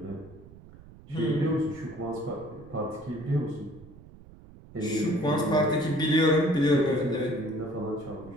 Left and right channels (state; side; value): noise; right; rumble, 20 dB below the sound